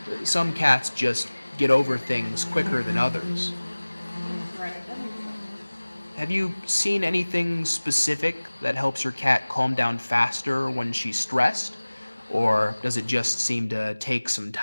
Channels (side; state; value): both; inverted; correlation -1.00